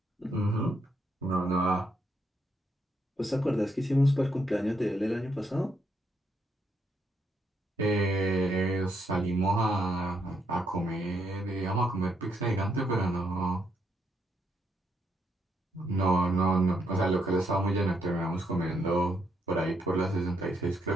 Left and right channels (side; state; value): both; normal; correlation 0.76